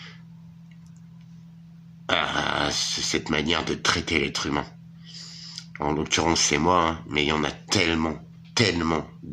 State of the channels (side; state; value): both; identical; correlation 1.00